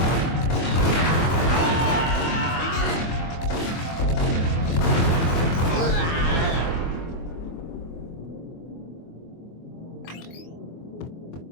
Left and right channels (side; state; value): right; late; 24 ms